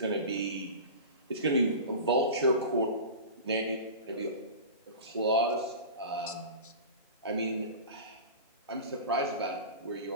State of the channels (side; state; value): both; inverted; correlation -0.32